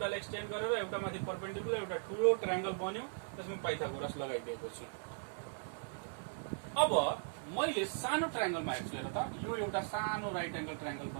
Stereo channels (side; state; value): left; silent; 52 dB below the other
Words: एक्सटेन्ड गरेर एउटा माथि परपेन्डिकुलर एउटा ठूलो ट्रायंगल बन्यो, त्यसमा पाइथागोरस लगाइदिएको छु। अब मैले सानो ट्रायंगलमा हेर्छु हेर त, यो एउटा सानो राइट एंगल ट्रायंगल